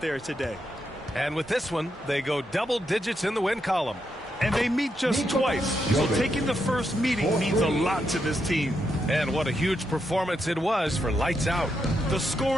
today. And with this one, they go double digits in the win column. And they meet just twice, so taking the first meeting means a lot to this team. And what a huge performance it was for Lights Out. The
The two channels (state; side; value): normal; both; correlation 0.82